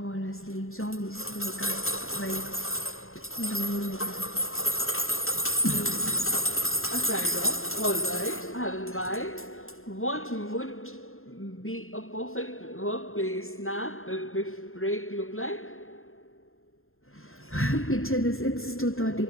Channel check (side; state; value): right; late; 0.61 ms